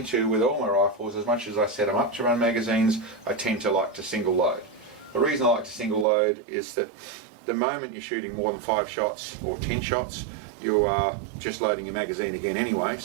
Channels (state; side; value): drops out; left; at 6.1 s